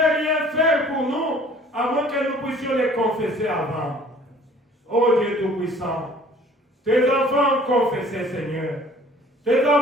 rien faire pour nous, à moins que nous puissions les confesser avant. Ô Dieu Tout-Puissant, tes enfants ont confessé, Seigneur. Tes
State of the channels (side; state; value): both; normal; correlation 0.53